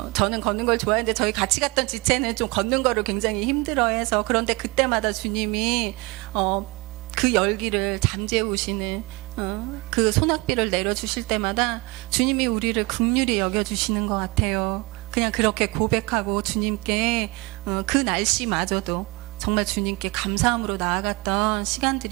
저는 걷는 걸 좋아했는데 저희 같이 갔던 지체는 좀 걷는 거를 굉장히 힘들어해서, 그런데 그때마다 주님이 그 열기를 잠재우시는 그 소낙비를 내려주실 때마다 주님이 우리를 긍휼히 여겨주시는 것 같아요. 그냥 그렇게 고백하고 주님께 그 날씨마저도 정말 주님께 감사함으로 나아갔던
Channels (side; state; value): left; quieter; 24.8 dB